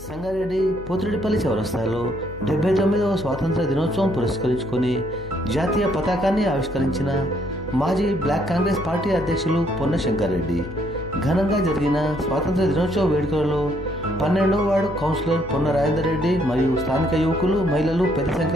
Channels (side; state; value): left; noise; hum, 16 dB below the sound